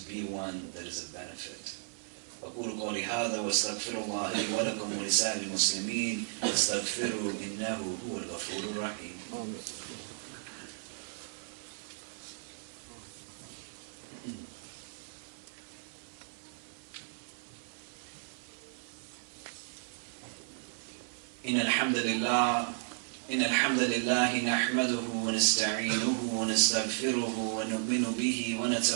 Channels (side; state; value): left; silent; 55 dB below the other